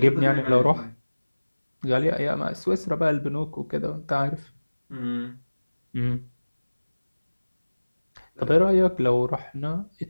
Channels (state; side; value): inverted; both; correlation -1.00